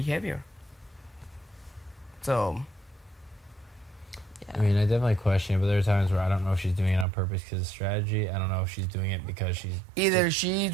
So I mean, I definitely question it, but there are times where I don't know if she's doing it on purpose because of strategy. I don't know if she's doing it because she's... Either she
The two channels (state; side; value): drops out; left; at 7.1 s